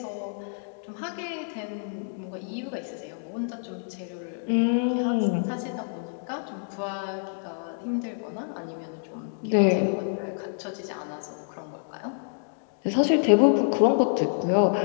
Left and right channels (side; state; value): right; silent; digital silence